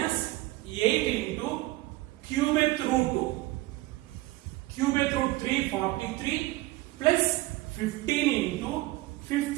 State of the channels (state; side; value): quieter; left; 19.1 dB